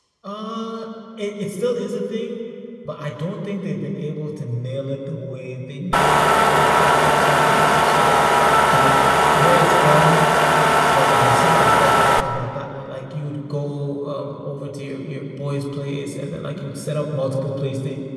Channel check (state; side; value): identical; both; correlation 1.00